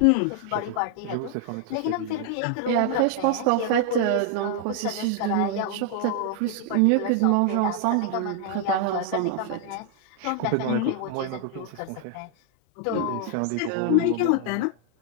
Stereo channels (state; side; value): different; both; correlation 0.00